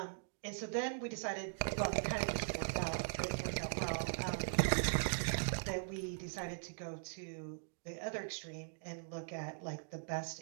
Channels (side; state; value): left; silent; digital silence